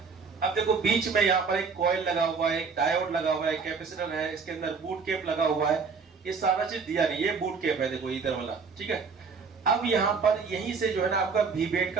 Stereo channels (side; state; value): left; quieter; 5.2 dB